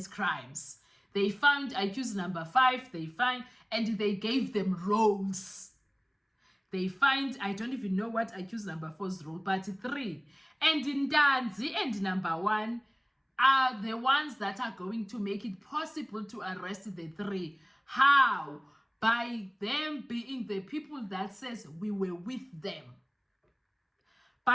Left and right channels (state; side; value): identical; both; correlation 1.00